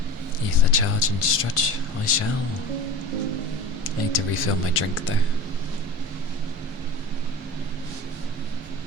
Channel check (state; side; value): normal; both; correlation 0.34